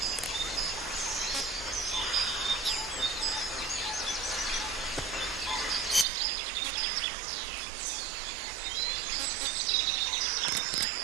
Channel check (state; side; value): drops out; left; at 6.1 s